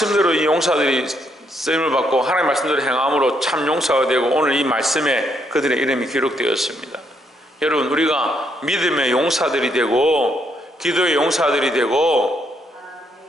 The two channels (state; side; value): normal; both; correlation 0.74